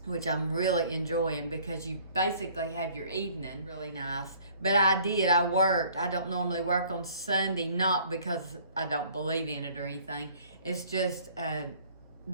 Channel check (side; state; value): both; inverted; correlation -0.56